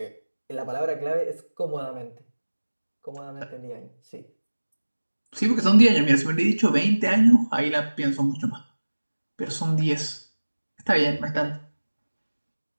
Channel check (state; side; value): inverted; both; correlation -1.00